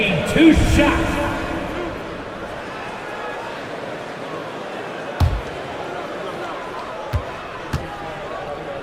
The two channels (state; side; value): identical; both; correlation 1.00